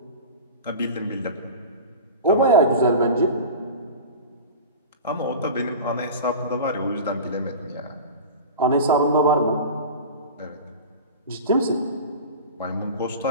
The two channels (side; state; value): both; inverted; correlation -0.32